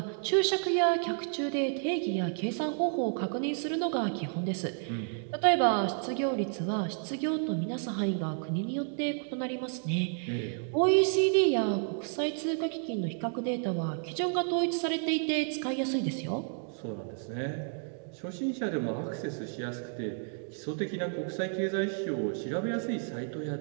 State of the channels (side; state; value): left; silent; 57 dB below the other